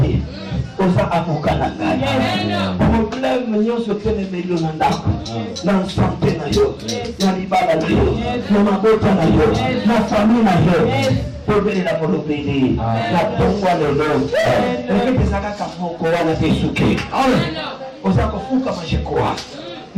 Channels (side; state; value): both; identical; correlation 1.00